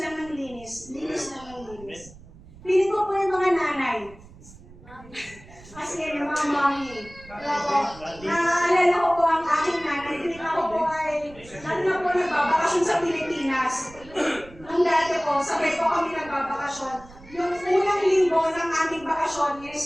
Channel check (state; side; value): noise; right; rumble, 21 dB below the sound